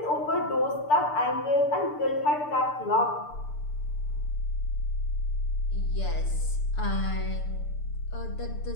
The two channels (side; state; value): right; late; 6.8 ms